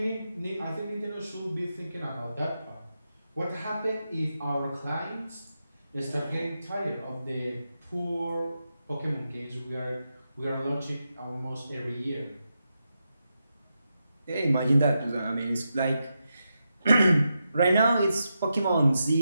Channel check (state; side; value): inverted; both; correlation -0.87